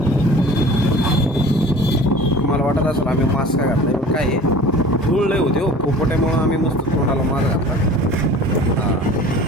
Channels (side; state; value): both; normal; correlation 0.43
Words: मला वाटत असेल आम्ही मास्क का घातलाय पण काय आहे धूळ लय होते हो पोपट्यामुळं आम्ही मस्त तोंडाला मास्क घातला.